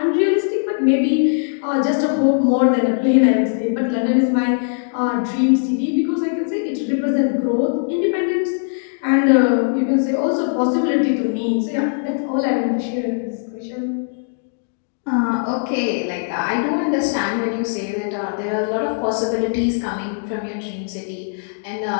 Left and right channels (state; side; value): silent; right; digital silence